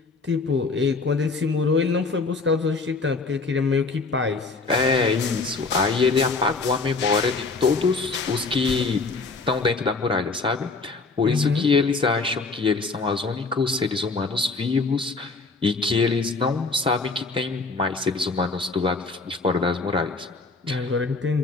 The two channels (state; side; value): quieter; right; 4.0 dB